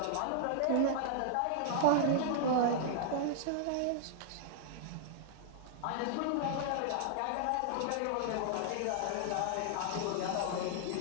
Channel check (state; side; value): different; both; correlation -0.01